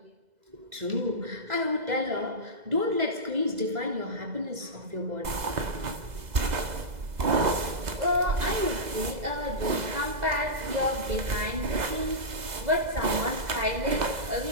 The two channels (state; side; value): late; left; 2.0 ms